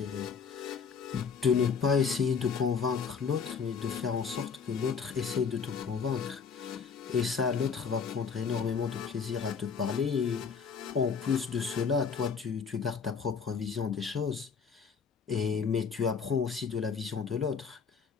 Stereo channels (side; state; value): right; quieter; 6.0 dB